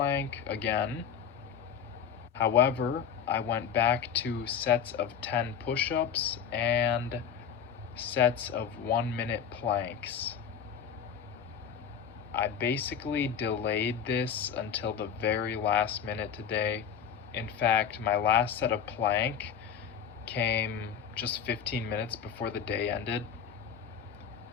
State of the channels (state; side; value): quieter; right; 7.7 dB